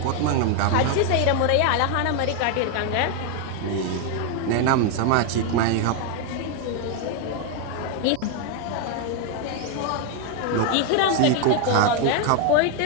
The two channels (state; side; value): different; both; correlation 0.01